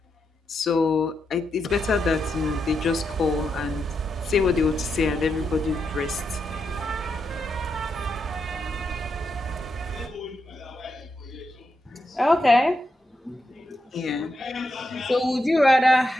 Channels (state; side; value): normal; both; correlation 0.84